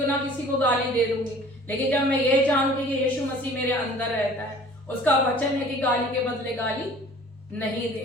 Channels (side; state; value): both; normal; correlation 0.48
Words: ना किसी को गाली दे दूंगी। लेकिन जब मैं ये जानूंगी कि यीशु मसीह मेरे अंदर रहता है, उसका वचन है कि गाली के बदले गाली नहीं